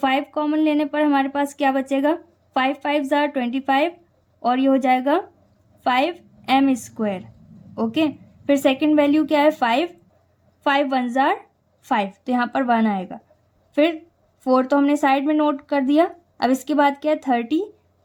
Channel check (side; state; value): both; identical; correlation 1.00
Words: कॉमन लेने पर हमारे पास क्या बचेगा 5 5 जार 25 और ये हो जाएगा 5m स्क्वायर। ओके, फिर सेकंड वैल्यू क्या है 5 5 1 जार 5, तो यहाँ पर 1 आएगा। फिर 4 तो हमने साइड में नोट कर दिया। अब इसके बाद क्या है 30,